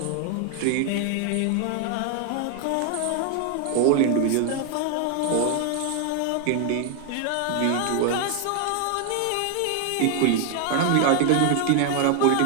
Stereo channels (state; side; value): different; both; correlation 0.00